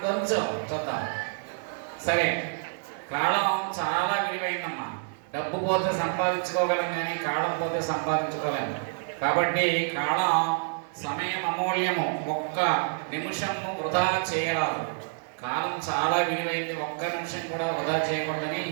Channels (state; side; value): silent; left; digital silence